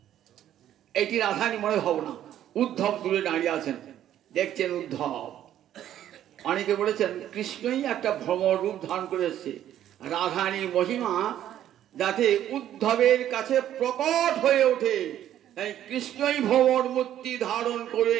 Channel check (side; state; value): left; quieter; 11.5 dB